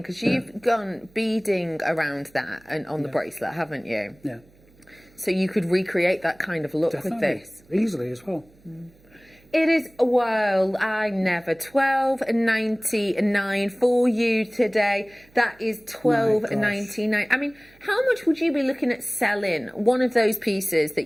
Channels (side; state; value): right; noise; hum, 29 dB below the sound